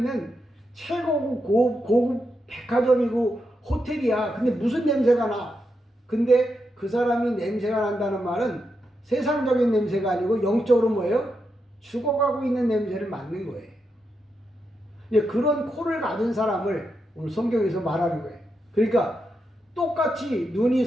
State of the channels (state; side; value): normal; both; correlation 0.84